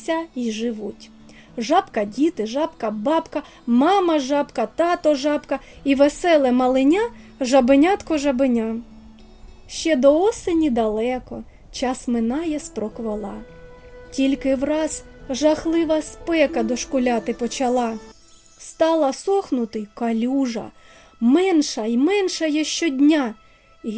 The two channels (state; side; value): identical; both; correlation 1.00